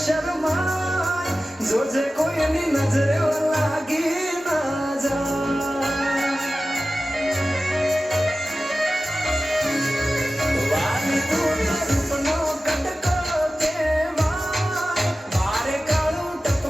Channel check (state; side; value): normal; both; correlation 0.95